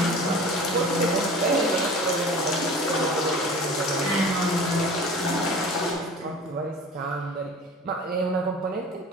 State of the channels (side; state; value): both; normal; correlation 0.40